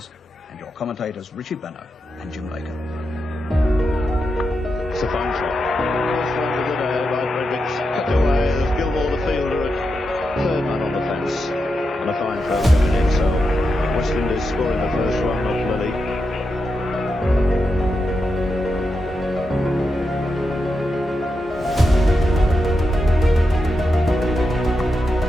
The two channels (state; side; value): normal; both; correlation 0.87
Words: and your commentators Richie Benno and Jim Baker. It's a fine shot. First one of the day by Fredericks. Cut away. There's Gilmore, the fielder, at third man on the fence. And a fine throw coming in. So West Indies scoring the first run off Lily.